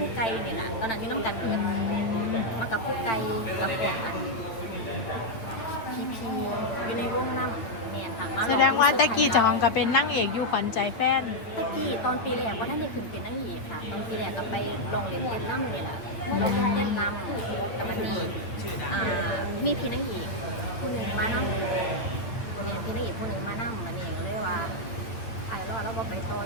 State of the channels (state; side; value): late; right; 8.9 ms